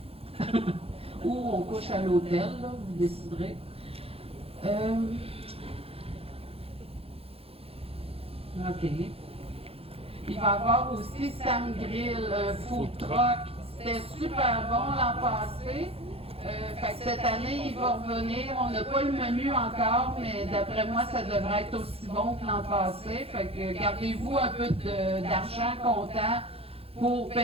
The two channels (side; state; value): left; late; 0.28 ms